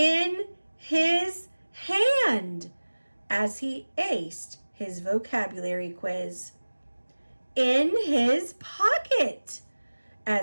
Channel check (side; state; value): both; inverted; correlation -1.00